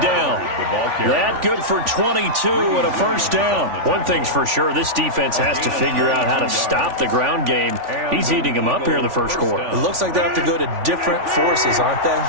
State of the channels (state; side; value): late; left; 3.4 ms